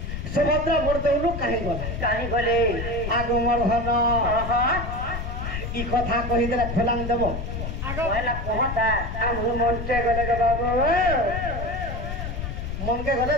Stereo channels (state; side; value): noise; left; rumble, 5 dB below the sound